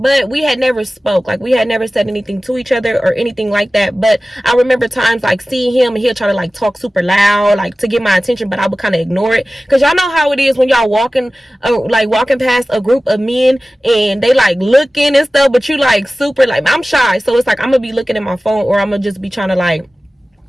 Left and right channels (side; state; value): both; normal; correlation 0.96